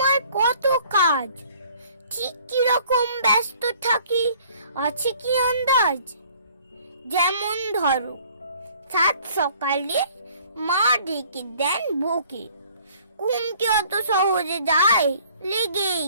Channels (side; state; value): both; inverted; correlation -0.56